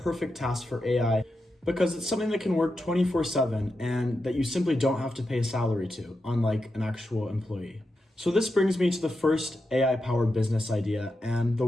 tasks for AI because it's something that can work 24/7 and that you simply don't have to pay a salary to, unlike an actual employee. So this brings me to the first AI-powered business idea, and the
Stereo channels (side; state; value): both; normal; correlation 0.88